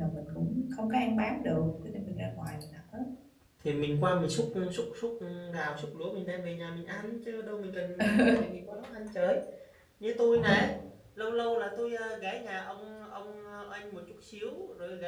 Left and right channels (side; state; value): both; identical; correlation 1.00